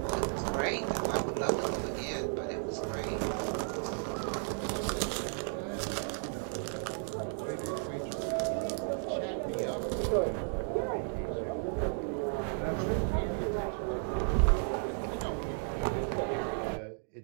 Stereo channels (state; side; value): silent; left; 55 dB below the other